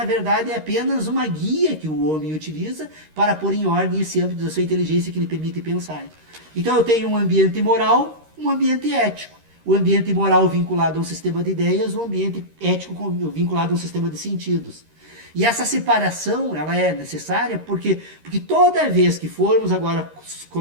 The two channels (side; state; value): left; late; 13 ms